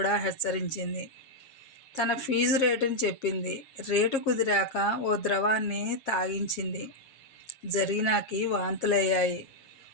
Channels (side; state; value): right; late; 7.4 ms